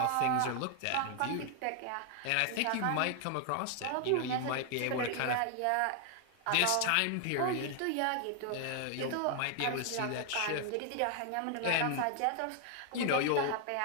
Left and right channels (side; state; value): both; different; correlation 0.00